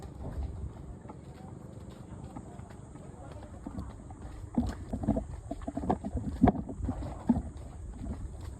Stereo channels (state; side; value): identical; both; correlation 1.00